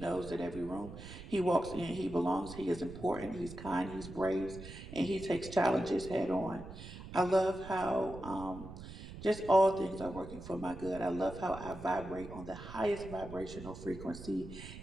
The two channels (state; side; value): noise; right; rumble, 13 dB below the sound